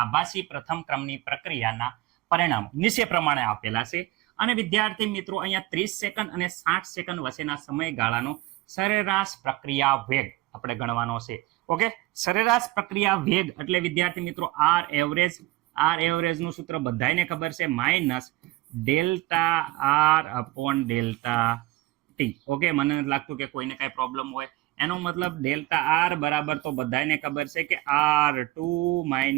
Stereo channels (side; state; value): left; quieter; 18.9 dB